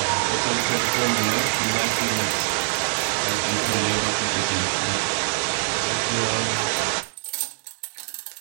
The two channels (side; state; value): left; silent; digital silence